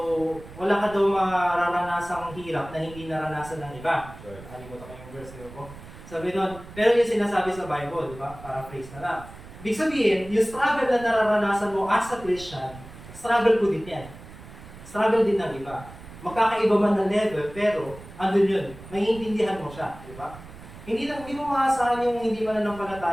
daw mararanasang hirap na hindi naranasan ng iba. Nakalimutan ko yung verse, di ba po? Sabi doon, pero yung sinasabi sa Bible, di ba? Paraphrase na lang. Ibig sabihin, yung struggle na nararanasan mo as a Christian, struggle ko din yan. Struggle din ng iba. Magkakaiba man na level, pero andun yun. Maiintindihan mo siya, di ba? Hindi mo maasahan yung hindi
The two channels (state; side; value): noise; right; rumble, 17 dB below the sound